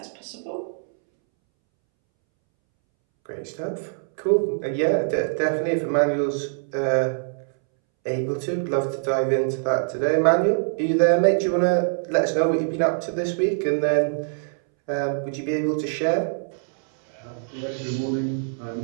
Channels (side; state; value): left; silent; 63 dB below the other